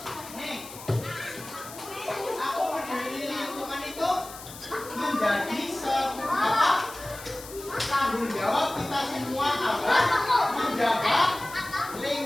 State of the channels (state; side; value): noise; left; hiss, 15 dB below the sound